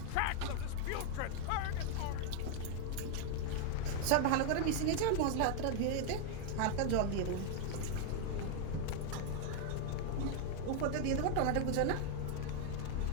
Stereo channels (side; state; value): both; different; correlation 0.00